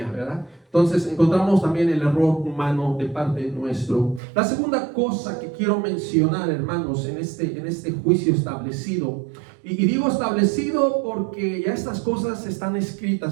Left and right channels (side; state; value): left; drops out; at 4.2 s